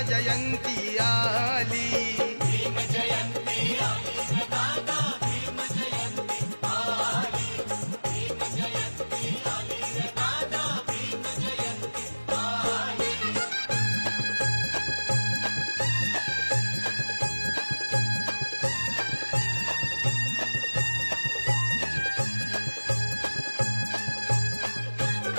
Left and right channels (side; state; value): both; inverted; correlation -1.00